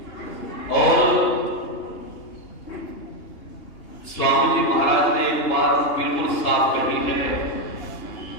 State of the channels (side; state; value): right; late; 3.1 ms